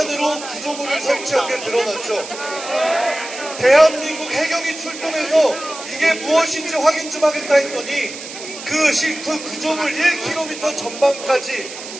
구조물을 설치한 게 드러났죠. 대한민국 해경이 출동해서 이게 무엇인지 확인 좀 하겠다 했더니 그 구조물 1km 전방까지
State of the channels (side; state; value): right; noise; hiss, 12 dB below the sound